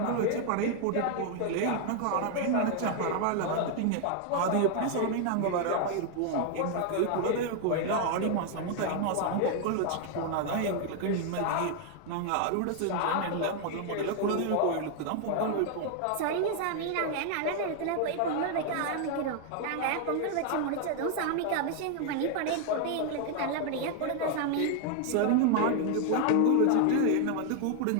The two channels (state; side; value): different; both; correlation 0.00